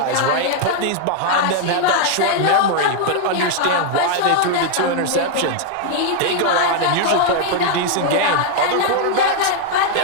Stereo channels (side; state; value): both; different; correlation 0.00